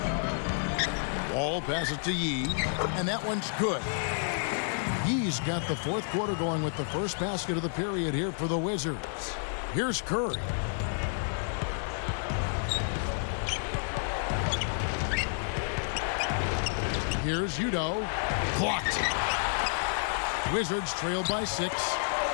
Ball passes to Yee, and that one's good. Yee's got the fourth quarter going with the first basket of the period here for the Wizards. Here's Curry. Here's Udo. Blocked. Wizards trail by 6.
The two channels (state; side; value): silent; right; digital silence